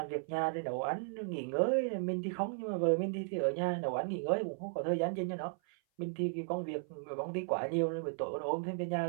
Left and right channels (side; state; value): left; silent; 54 dB below the other